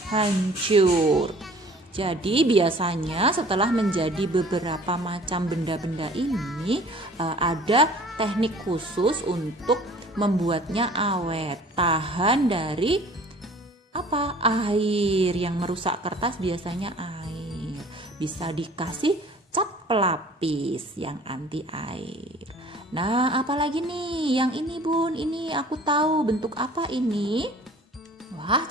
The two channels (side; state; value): both; normal; correlation 0.49